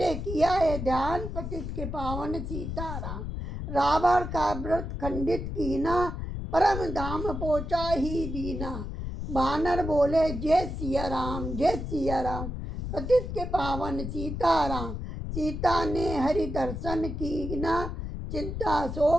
किया है ध्यान, पतित के पावन सीताराम। रावण का व्रत खंडित कीना, परम धाम पहुँचा ही दीना, बानर बोले जय सिया राम, जय सिया राम, पतित के पावन सीताराम। सीता ने हरि दर्शन कीना, चिंता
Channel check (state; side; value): noise; left; rumble, 5 dB below the sound